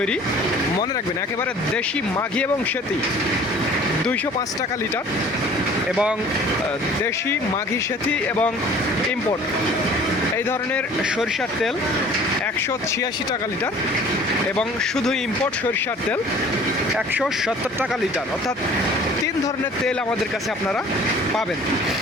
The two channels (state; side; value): normal; both; correlation 0.49